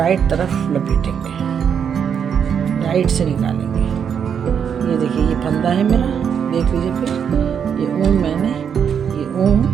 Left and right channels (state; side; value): quieter; left; 7.6 dB